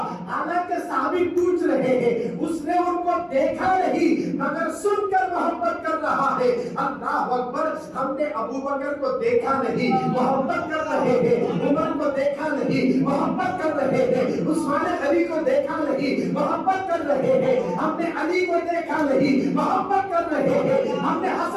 حالانکہ صحابی پوچھ رہے ہیں اس نے ان کو دیکھا نہیں مگر سن کر محبت کر رہا ہے. اللہ اکبر, ہم نے ابو بکر کو دیکھا نہیں محبت کر رہے ہیں, عمر کو دیکھا نہیں محبت کر رہے ہیں, عثمان علی کو دیکھا نہیں محبت کر رہے ہیں, ہم نے علی کو دیکھا نہیں محبت کر رہے ہیں, ہم نے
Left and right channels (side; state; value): both; identical; correlation 1.00